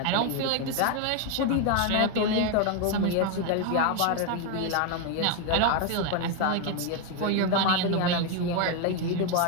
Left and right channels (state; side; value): different; both; correlation 0.01